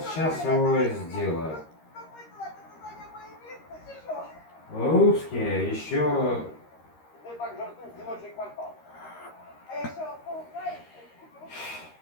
сейчас его сделаю. Русские еще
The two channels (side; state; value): right; late; 13 ms